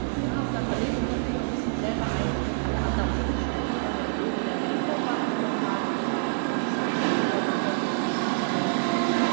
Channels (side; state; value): left; silent; 60 dB below the other